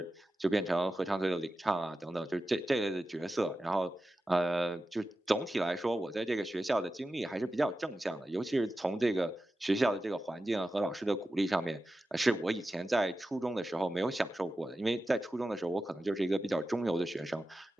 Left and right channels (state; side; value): normal; both; correlation 0.92